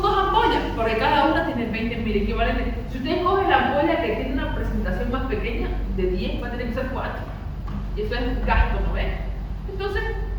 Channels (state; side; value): identical; both; correlation 1.00